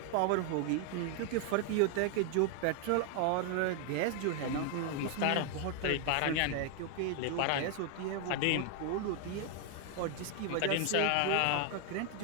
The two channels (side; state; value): both; different; correlation 0.00